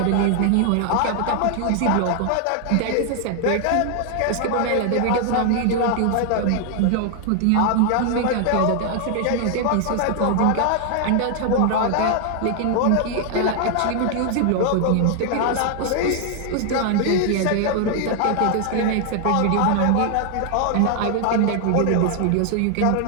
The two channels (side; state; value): both; different; correlation 0.00